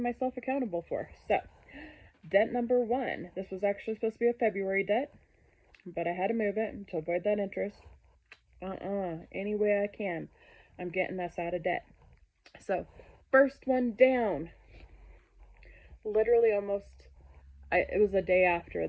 myself accountable for. So, debt number 1. This was actually supposed to be a February debt, but I had to move it to avoid that interest. Any way I can, I'm getting us out of debt. So, first one down. Literally it was the day after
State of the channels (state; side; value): identical; both; correlation 1.00